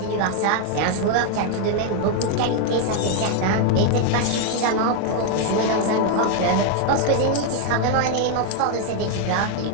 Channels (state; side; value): different; both; correlation 0.00